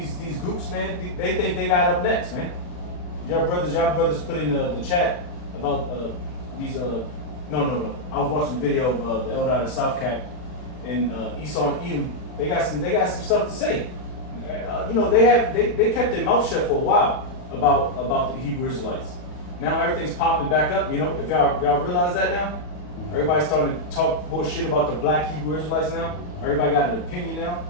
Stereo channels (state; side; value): late; right; 39 ms